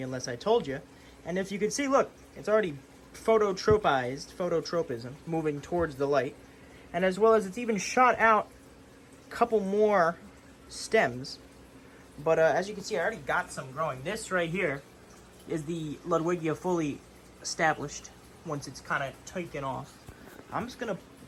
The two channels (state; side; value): identical; both; correlation 1.00